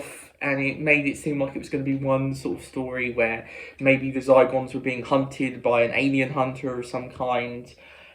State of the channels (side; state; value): both; identical; correlation 1.00